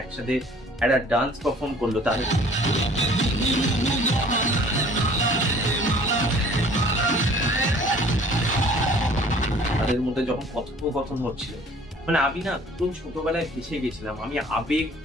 একসাথে একটা ডান্স পারফর্ম করলো, তাদের মধ্যে যখন কথোপকথন হচ্ছিল, আমি না একদম ছোটবেলায় ভেসে গেছিলাম। আমি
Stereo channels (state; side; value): normal; both; correlation 0.52